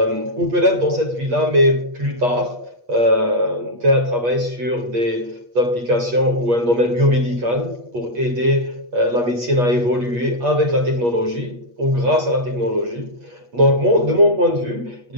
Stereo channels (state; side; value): late; left; 8.4 ms